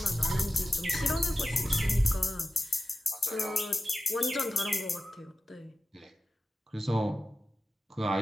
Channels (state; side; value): normal; both; correlation 0.91